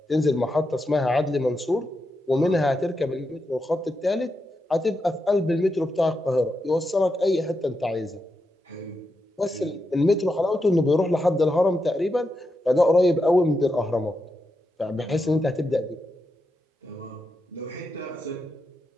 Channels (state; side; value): normal; both; correlation 0.86